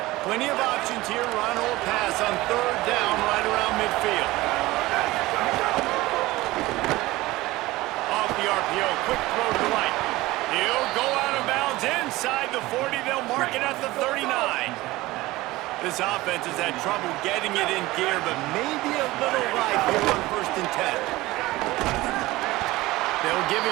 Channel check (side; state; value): left; quieter; 19.0 dB